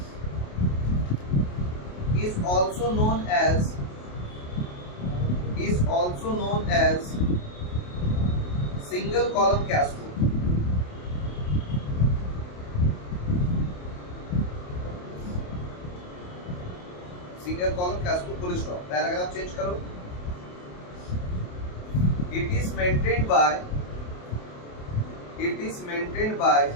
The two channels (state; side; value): late; right; 28 ms